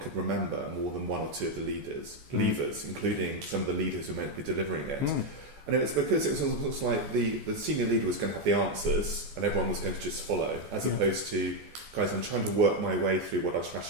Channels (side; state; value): left; late; 14 ms